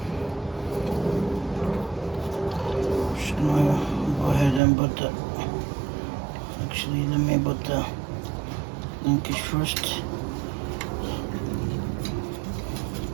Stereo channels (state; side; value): drops out; left; at 4.6 s